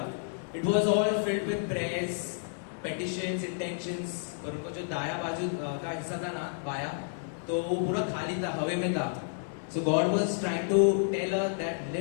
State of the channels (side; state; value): right; silent; 57 dB below the other